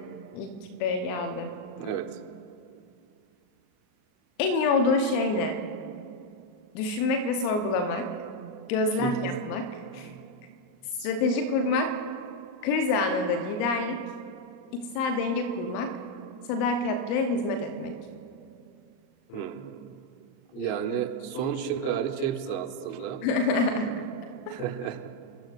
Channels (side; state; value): right; late; 38 ms